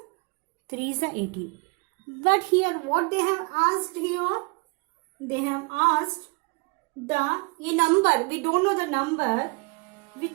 3s are 18. But here what they have asked here, they have asked a number, we don't know the number,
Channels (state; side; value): quieter; left; 30.2 dB